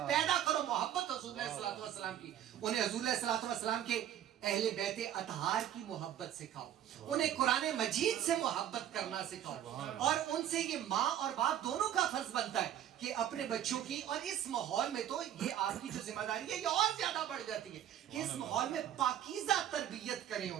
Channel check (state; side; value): quieter; left; 10.8 dB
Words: پیدا کرو محبت حضور علیہ الصلوۃ والسلام کی. انہیں حضور علیہ الصلوۃ والسلام کے اہل بیت اطہار کی محبت سکھاؤ, انہیں قرآن مجید سے محبت کرنا سکھاؤ, اور ان سے یہ ماں اور باپ دونوں کا فرض بنتا ہے کہ اپنے بچوں کی, اور اس ماحول میں تو یہ آپ کی جو ذمہ داری ہے یہ اور زیادہ بڑھ جاتی ہے کہ اس ماحول میں پاکیزہ تربیت کریں